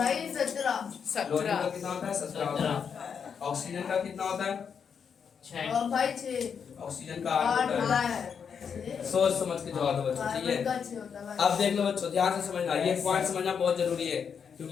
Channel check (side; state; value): right; quieter; 6.8 dB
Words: 17 का कितना होता है, 17 होता है। ऑक्सीजन का कितना होता है, 6 ऑक्सीजन का 8 होता है। सोच समझ के जवाब दो बच्चों, ठीक है। अब देख लो बच्चों ध्यान से समझना, ये पॉइंट समझना बहुत जरूरी है